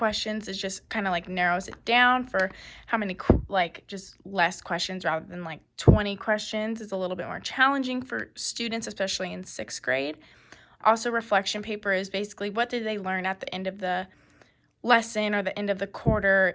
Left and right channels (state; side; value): identical; both; correlation 1.00